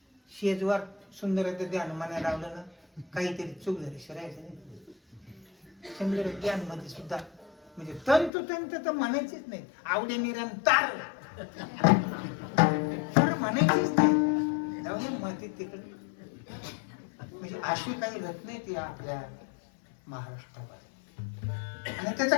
शेजवार सुंदर ध्यान म्हणायला लावलं ना काहीतरी चूक झाली शिरायचं नाही. सुंदर ध्यान मध्ये सुद्धा म्हणजे तंतोतंत तर म्हणायचीच नाही. आवडे निरंतर म्हणायचीच नाही. जाऊन माती तिकडे म्हणजे अशी काही रत्न नाही ती आपल्या महाराष्ट्रामध्ये आणि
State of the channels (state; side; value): drops out; right; at 8.3 s